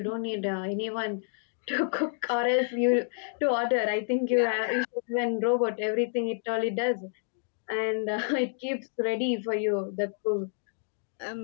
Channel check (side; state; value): right; silent; digital silence